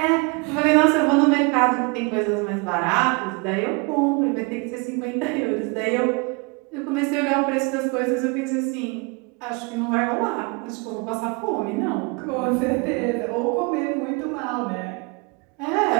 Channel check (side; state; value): left; quieter; 30.2 dB